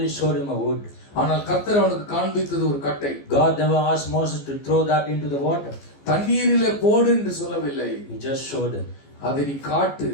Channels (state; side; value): late; right; 14 ms